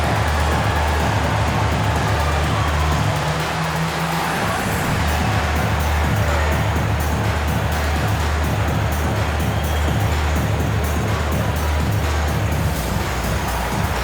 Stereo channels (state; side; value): identical; both; correlation 1.00